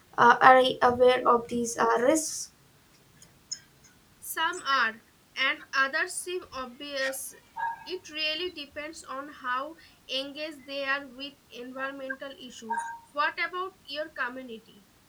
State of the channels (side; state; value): both; identical; correlation 1.00